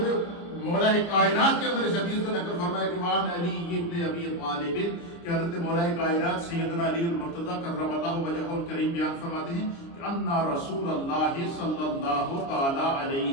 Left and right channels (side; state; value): right; late; 29 ms